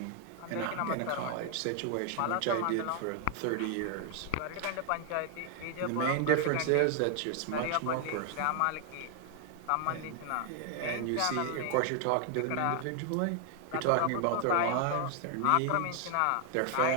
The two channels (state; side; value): different; both; correlation 0.00